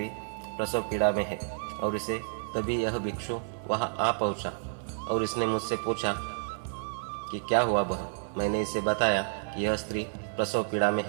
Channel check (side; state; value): left; silent; 58 dB below the other